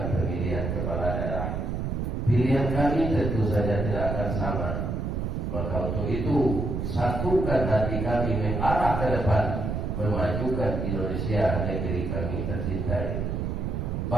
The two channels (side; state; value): right; noise; rumble, 2 dB below the sound